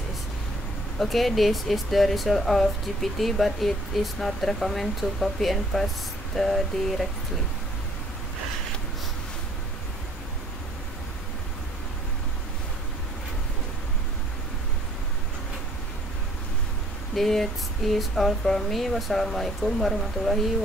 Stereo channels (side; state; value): both; normal; correlation 0.59